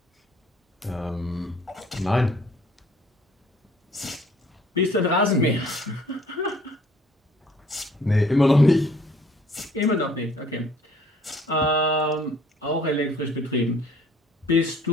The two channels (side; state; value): both; normal; correlation 0.57